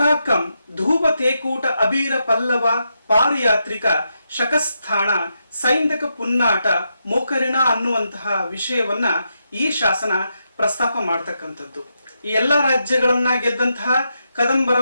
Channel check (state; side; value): inverted; both; correlation -0.84